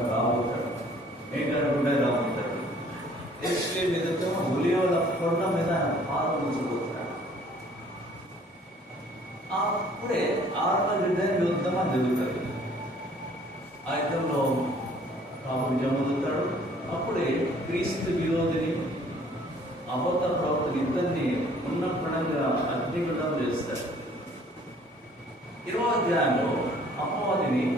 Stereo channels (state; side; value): normal; both; correlation 0.56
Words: రాబోతాడు, మేఘాడుగుండా రాబోతాడు. యెరూషలేము ఎదుట ఒలీవల కొండ మీద ఆయన పాదం ఉంచబోతున్నాడు. అప్పుడే ఆర్మగడ్డని యుద్ధం అని జరుగుతుంది. ఆ యుద్ధంలో ప్రభు విజయం పొందుతాడు. అప్పుడే క్రీస్తు విరోధిని, అబద్ధ ప్రవక్తని ఇద్దరిని ఉన్న పడంగా అగ్నిగుండం చేస్తాడు. 20వ అధ్యాయంలో అపవాదిని